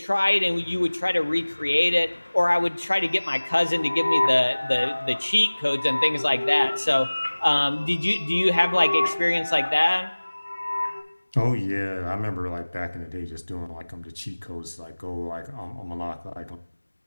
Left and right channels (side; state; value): both; inverted; correlation -1.00